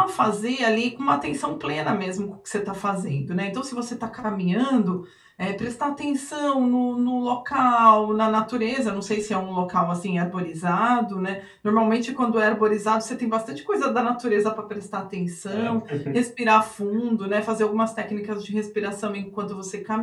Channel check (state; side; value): identical; both; correlation 1.00